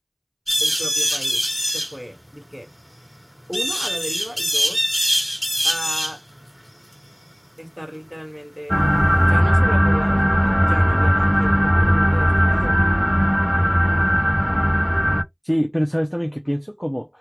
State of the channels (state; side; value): identical; both; correlation 1.00